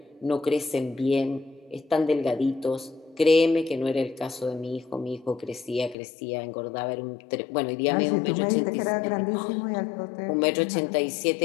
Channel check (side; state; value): right; drops out; at 6.0 s